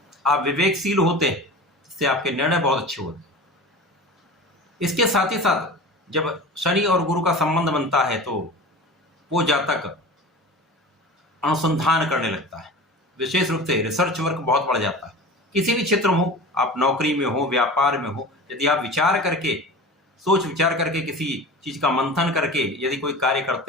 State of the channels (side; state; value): both; normal; correlation 0.35